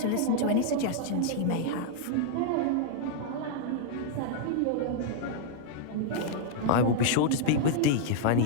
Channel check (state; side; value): different; both; correlation -0.01